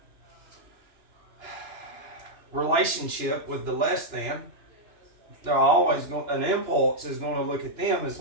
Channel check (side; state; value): left; late; 2.9 ms